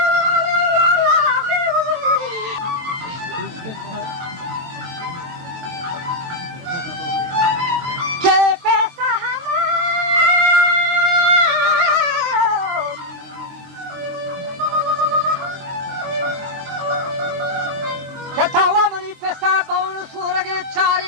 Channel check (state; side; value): late; left; 23 ms